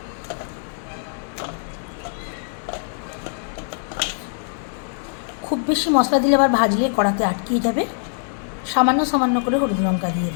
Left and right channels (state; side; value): silent; right; digital silence